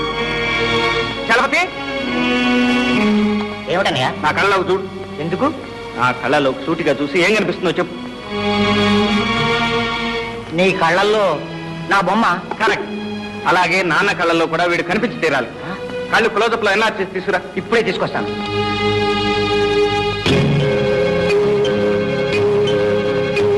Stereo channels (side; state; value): both; identical; correlation 1.00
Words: చలపతి, ఏమిటన్నయ్యా? నా కళ్ళలోకి చూడు. ఎందుకు? నా కళ్ళలోకి సూటిగా చూసి ఏం కనిపిస్తుందో చెప్పు. నీ కళ్ళల్లో నా బొమ్మ. కరెక్ట్. అలాగే నాన్న కళ్ళల్లో కూడా వీడు కనిపించి తీరాలి. కళ్ళు క్లోజప్లో ఎన్ఆర్ చేసి తీసుకురా. ఇప్పుడే తీసుకొస్తాను.